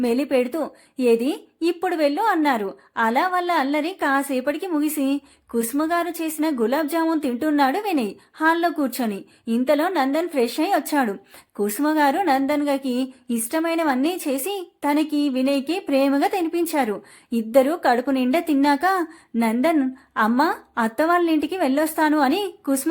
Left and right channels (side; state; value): both; identical; correlation 1.00